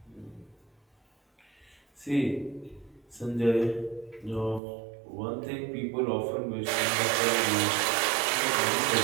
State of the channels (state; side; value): drops out; left; at 4.6 s